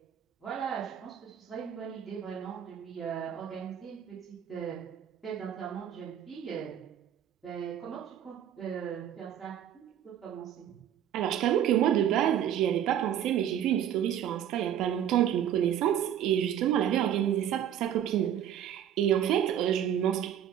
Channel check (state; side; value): quieter; left; 10.1 dB